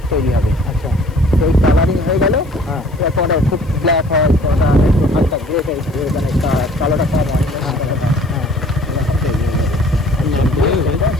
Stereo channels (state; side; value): noise; left; hiss, 29 dB below the sound